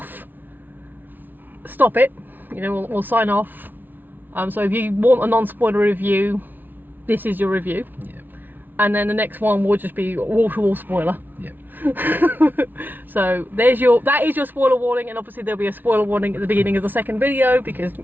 Stop it. You know, we'll sign off. So if you want a non-spoiler review, this is your review. Yeah. And then the next one will just be wall-to-wall spoiler. Yeah. So that is your spoiler warning, and obviously there'll be a spoiler warning at the beginning of the second video because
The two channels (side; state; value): left; late; 0.089 ms